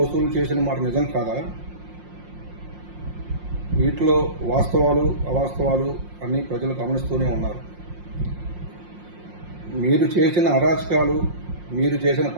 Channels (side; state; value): left; late; 5.6 ms